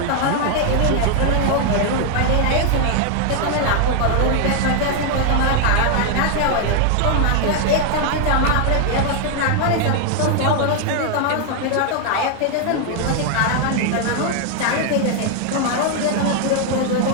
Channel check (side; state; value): both; different; correlation 0.00